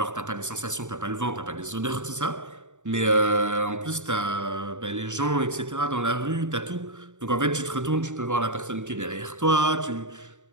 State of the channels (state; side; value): late; left; 0.85 ms